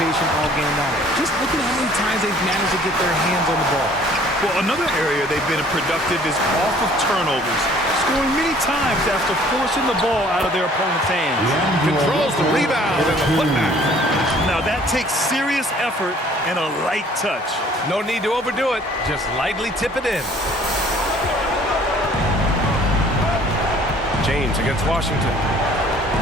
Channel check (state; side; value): normal; both; correlation 0.55